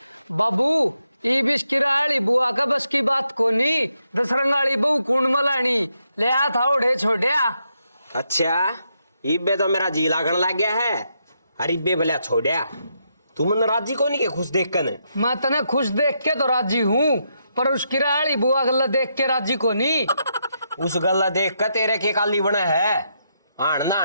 बाबू ई बिस्किराली बुआ का बस की बात कोनी। दसरंगाली बहू कुंड मलानी ले आ था उड़े छोड़िया। अच्छा इब्बे तो मेरा जी लागण लग गया है। अरे इब्बे भले छोड़िया तू मन राजी को नहीं के खुश देख कर। मैं तने खुश देख के तो राजी हूँ, पर उस किराली बुआ गल्ला देख के राजी को नहीं। उस गल्ला देख कर तेरे के काली बना है। आन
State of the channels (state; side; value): inverted; both; correlation -0.80